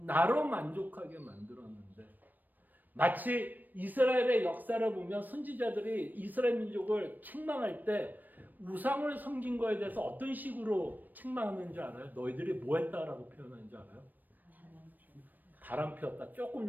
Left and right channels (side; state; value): left; late; 0.088 ms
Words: 만족하게 만들었는데 마치 이스라엘의 역사를 보면 선지자들이 이스라엘 민족을 책망할 때 우상을 섬긴 거에 대해서 어떤 식으로 책망하는지 알아요? 너희들이 뭐 했다라고 표현하는지 알아요? 바람 피웠다. 조금